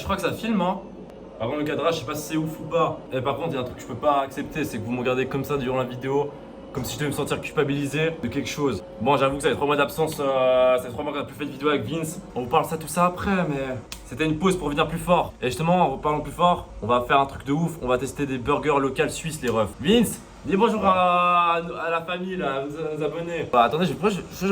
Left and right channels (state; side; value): identical; both; correlation 1.00